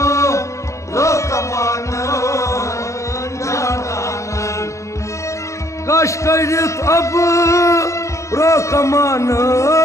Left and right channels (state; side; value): late; right; 0.15 ms